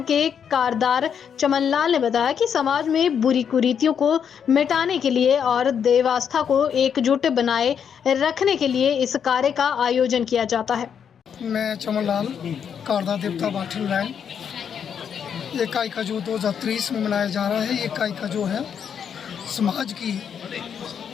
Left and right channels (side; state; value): right; quieter; 7.7 dB